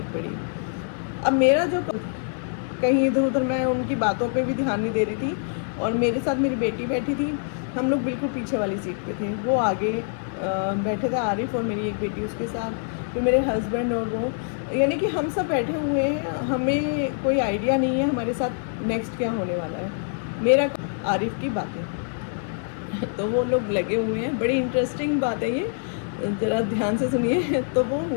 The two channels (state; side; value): silent; right; 62 dB below the other